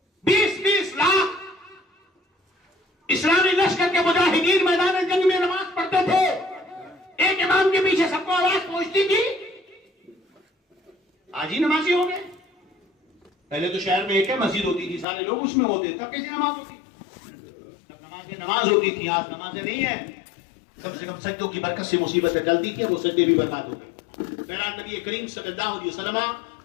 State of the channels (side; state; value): right; drops out; at 15.1 s